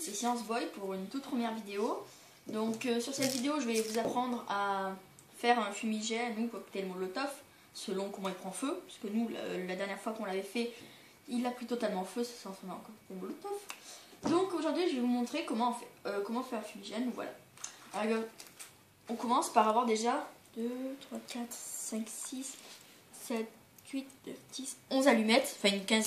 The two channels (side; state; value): both; identical; correlation 1.00